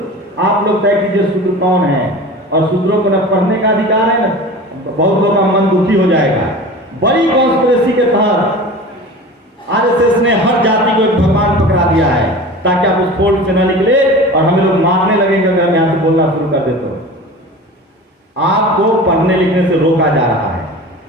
आप लोग तय कीजिए शूद्र कौन है। और शूद्रों को न पढ़ने का अधिकार है, न बहुत लोगों का मन दुखी हो जाएगा। बड़ी कॉन्स्पिरेसी के तहत आरएसएस ने हर जाति को एक भगवान पकड़ा दिया है, ताकि आप उस फोल्ड से न निकले और हमें लोग मारने लगेंगे अगर हम यहाँ से बोलना शुरू कर दे तो। आपको पढ़ने लिखने से रोका जा रहा है।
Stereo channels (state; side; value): normal; both; correlation 0.36